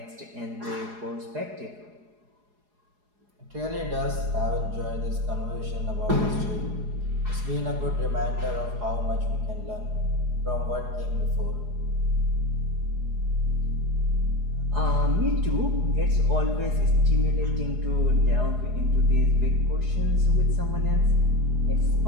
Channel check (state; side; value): late; left; 4.8 ms